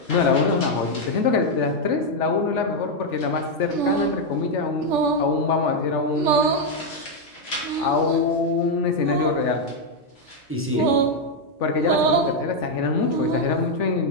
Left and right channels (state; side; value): normal; both; correlation 0.01